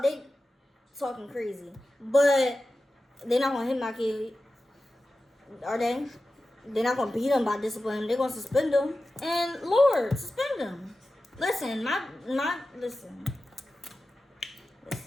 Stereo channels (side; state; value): both; normal; correlation 0.94